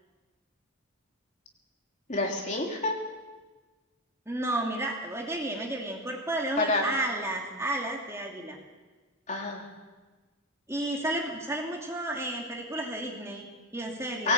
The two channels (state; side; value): normal; both; correlation 0.15